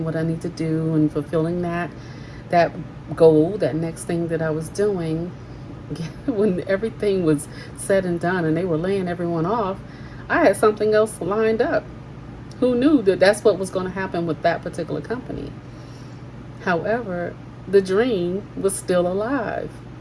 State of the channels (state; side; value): identical; both; correlation 1.00